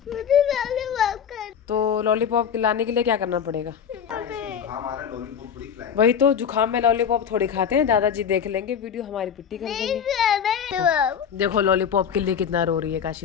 लॉलीपॉप कर। तो लॉलीपॉप लाने के लिए क्या करना पड़ेगा? वही तो, जुकाम में लॉलीपॉप थोड़ी खाते हैं, दादाजी देख लेंगे वीडियो, हमारी पिट्टी कर देंगे। देखो लॉलीपॉप के लिए कितना रो रही है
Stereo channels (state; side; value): quieter; right; 7.8 dB